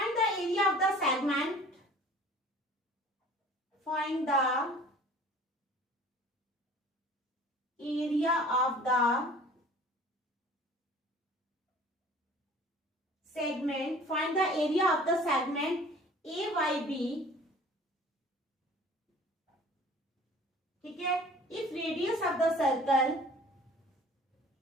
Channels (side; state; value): both; normal; correlation 0.47